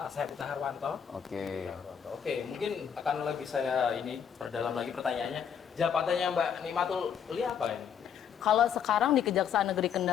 Saya Pita Harwanto. Oke. Oke, mungkin akan lebih saya ini perdalam lagi pertanyaannya. Jabatannya Mbak Nikmatul Ulia apa ini? Kalau sekarang di Kejaksaan Negeri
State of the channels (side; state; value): right; quieter; 7.9 dB